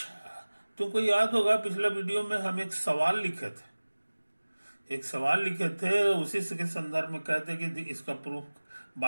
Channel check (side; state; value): both; inverted; correlation -1.00